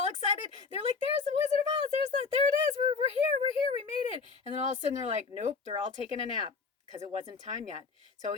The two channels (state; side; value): quieter; right; 4.9 dB